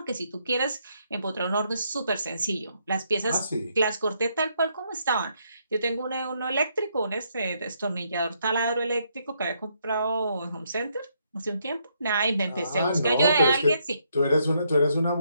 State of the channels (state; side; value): inverted; both; correlation -0.74